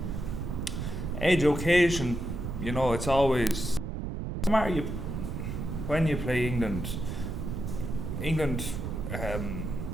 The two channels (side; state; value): right; noise; rumble, 4 dB below the sound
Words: Edge occasion, you know, it's always no matter when you play England